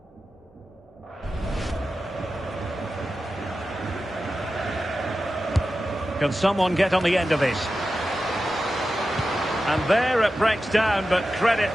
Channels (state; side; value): normal; both; correlation 0.92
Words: Can someone get on the end of this? And there it breaks down, but credit